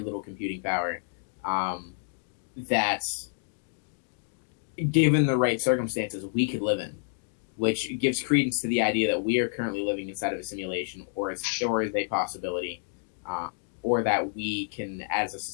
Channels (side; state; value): right; silent; digital silence